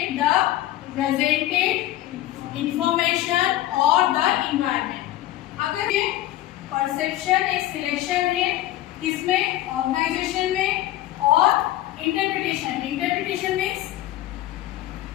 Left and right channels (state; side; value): quieter; right; 14.7 dB